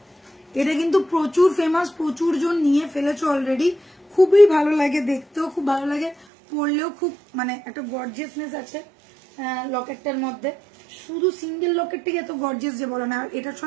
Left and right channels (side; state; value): left; drops out; at 6.2 s